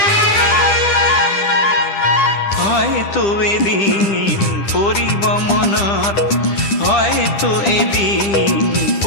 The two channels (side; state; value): right; late; 10 ms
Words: হয়তো এদিন পৰিব মনত, হয়তো এদিন